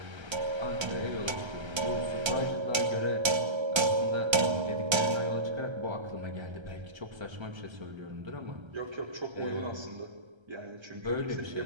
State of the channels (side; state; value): left; late; 1.3 ms